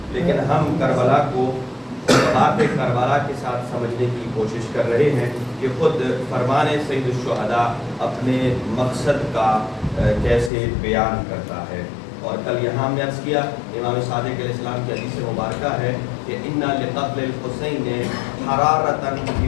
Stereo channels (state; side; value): drops out; right; at 10.5 s